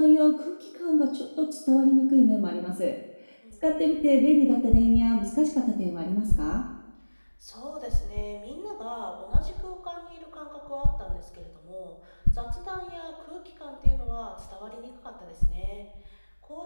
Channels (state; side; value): inverted; both; correlation -1.00